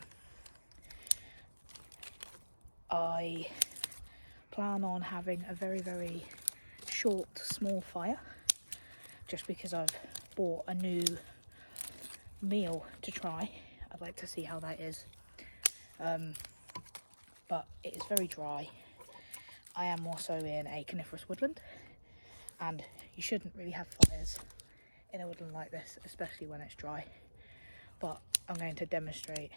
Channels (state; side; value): inverted; both; correlation -1.00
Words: I plan on having a very, very short, small fire just because I've bought a new meal to try. I'd like to see how that is. But it is very dry. I am also in a coniferous woodland, and you shouldn't really have fires in a woodland like this, especially when it's dry. But I'm going to demonstrate